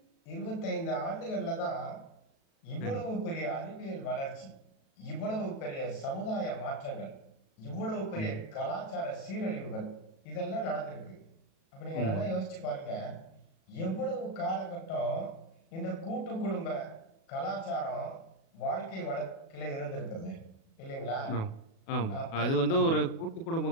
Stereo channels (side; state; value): right; late; 37 ms